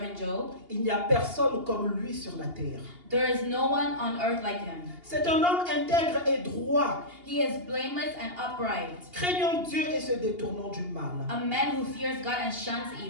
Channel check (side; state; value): left; late; 2.8 ms